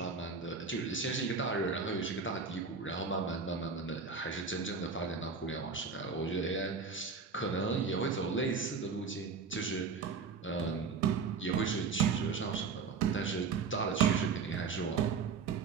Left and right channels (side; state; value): left; quieter; 5.1 dB